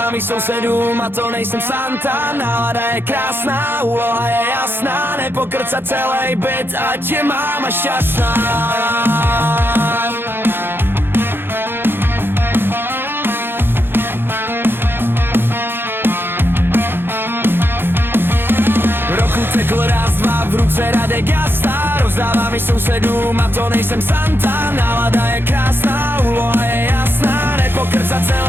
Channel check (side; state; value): left; late; 0.10 ms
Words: i sousedům a to nejsem Santa. Nálada je krásná, úloha je jasná. Nepokrcat celý byt, ať je máma šťastná. Roku tekl raz, dva, v ruce Radek Gasta. Rozdávám i sousedům a to nejsem Santa. Nálada je krásná, úloha je jasná. Nepokrcat